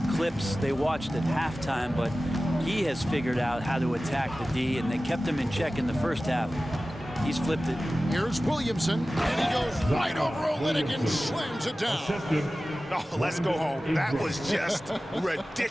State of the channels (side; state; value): both; normal; correlation 0.96